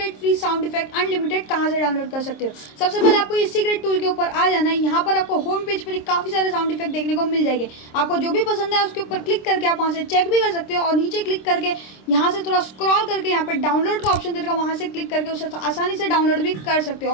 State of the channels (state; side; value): late; right; 26 ms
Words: free sound effect unlimited कहां से डाउनलोड कर सकते हो। सबसे पहले आपको इस सीक्रेट टूल के ऊपर आ जाना है। यहाँ पर आपको होम पेज पर काफी सारे साउंड इफेक्ट देखने को मिल जाएंगे। आपको जो भी पसंद है उसके ऊपर क्लिक करके आप वहां से चेक भी कर सकते हो और नीचे क्लिक करके यहाँ से थोड़ा स्क्रॉल करके यहाँ पर डाउनलोड का ऑप्शन देगा, वहां से क्लिक करके उसे आसानी से डाउनलोड भी कर सकते हो